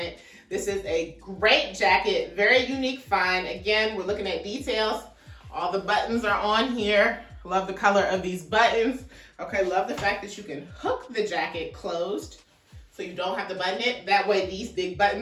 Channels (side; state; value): both; identical; correlation 1.00